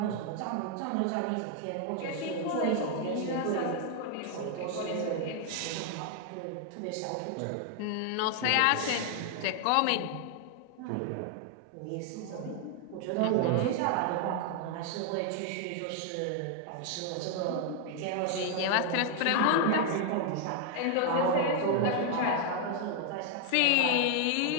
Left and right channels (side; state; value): both; different; correlation 0.00